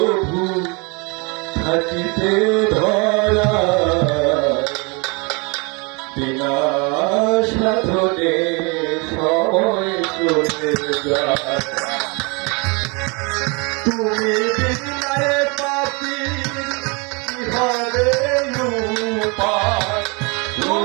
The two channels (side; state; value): left; quieter; 30.5 dB